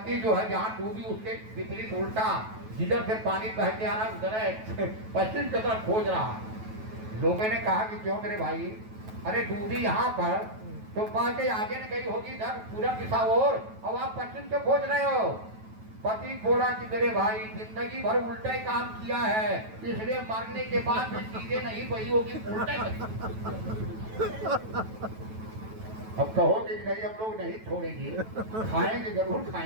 जो है जहाँ डूबी उसके विपरीत उल्टा, जिधर से पानी बह के आ रहा उधर पश्चिम की तरफ खोज रहा। लोगों ने कहा कि क्यों मेरे भाई, अरे डूबी यहाँ पर तो बाकी आगे न गई होगी इधर पूरब दिशा और आप पश्चिम से खोज रहे हो। पति बोला कि मेरे भाई जिंदगी भर उल्टा ही काम किया है, इसलिए मरने के बाद भी चीजें नहीं बही होगी, उल्टा ही। अब कहोगे कि नहीं हम लोग नहीं छोड़ेंगे, खाएंगे जरूर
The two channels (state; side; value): late; left; 9.2 ms